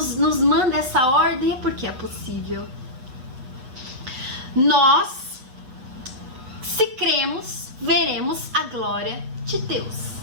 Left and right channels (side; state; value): left; late; 8.1 ms